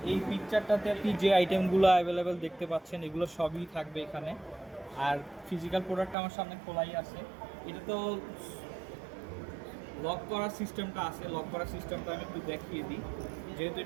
এই পিকচারটাতে আপনি যে আইটেমগুলো অ্যাভেলেবেল দেখতে পাচ্ছেন এগুলো সবই থাকবে এখানে। আর ফিজিক্যাল প্রোডাক্ট আমার সামনে খোলাই আছে। এটা তো লক করার সিস্টেমটা আছে, লক করার সিস্টেমটা আমি একটু দেখিয়ে দিই। যেহেতু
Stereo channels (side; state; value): left; drops out; at 6.2 s